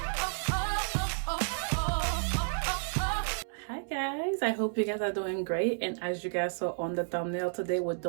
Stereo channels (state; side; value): silent; left; 57 dB below the other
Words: I hope you guys are doing great, and as you guys saw on the thumbnail, today we're